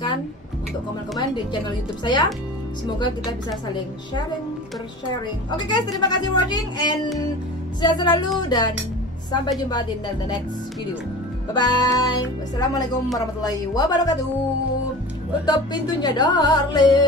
untuk komen-komen di channel YouTube saya. Semoga kita bisa saling bersharing. Oke guys, terima kasih watching and sehat selalu dan sampai jumpa di the next video. Bye bye. Wassalamualaikum warahmatullahi wabarakatuh. Tutup pintunya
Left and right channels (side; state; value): both; normal; correlation 0.36